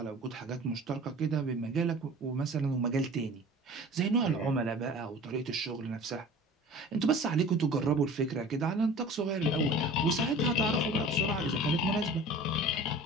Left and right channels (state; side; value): normal; both; correlation 0.41